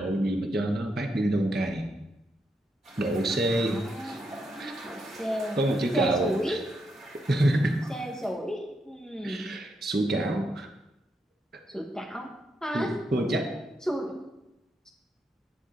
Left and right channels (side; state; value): both; normal; correlation 0.81